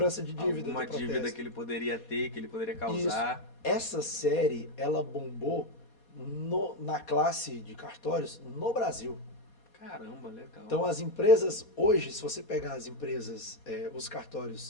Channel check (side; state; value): right; late; 4.2 ms